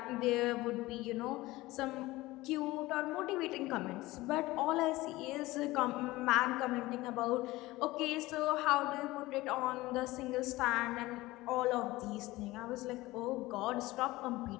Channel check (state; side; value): quieter; right; 19.1 dB